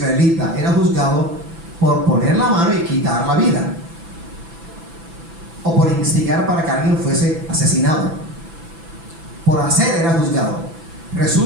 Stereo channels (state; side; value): late; left; 6.0 ms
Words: era juzgado por poner la mano y quitar la vida, o por instigar para que alguien fuese asesinado. Por hacer era juzgado.